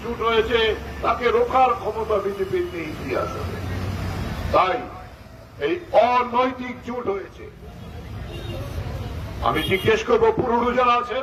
জোট হয়েছে তাকে রোখার ক্ষমতা বিজেপির নেই ইতিহাসে। তাই এই অনৈতিক জোট হয়েছে। আমি জিজ্ঞেস করবো পুরনো যারা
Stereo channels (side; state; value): both; identical; correlation 1.00